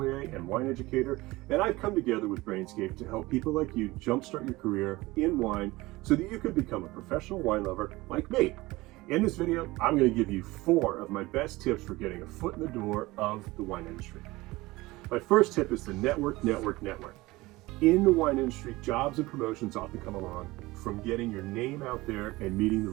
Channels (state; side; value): quieter; left; 20.3 dB